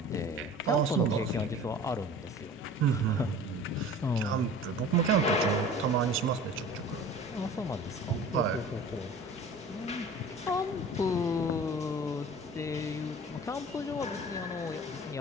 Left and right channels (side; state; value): both; normal; correlation 0.42